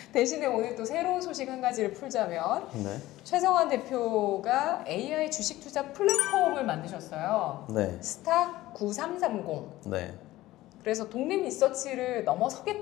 대신에 오늘 또 새로운 소식 한 가지를 풀자면 네. 최성환 대표가 AI 주식 투자 플랫폼을 만드셨어요. 네. 스탁 9330. 네. 그래서 독립 리서치를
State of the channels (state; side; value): quieter; right; 16.6 dB